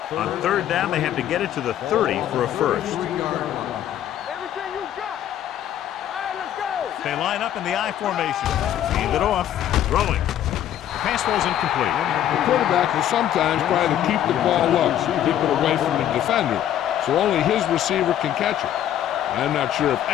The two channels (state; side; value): quieter; right; 11.2 dB